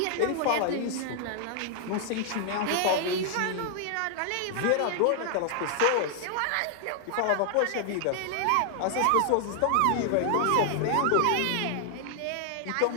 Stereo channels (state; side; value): different; both; correlation 0.00